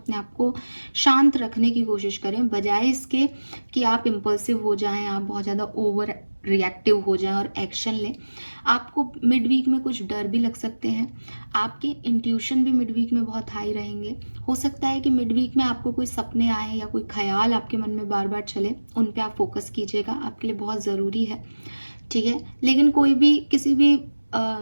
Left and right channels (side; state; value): both; inverted; correlation -1.00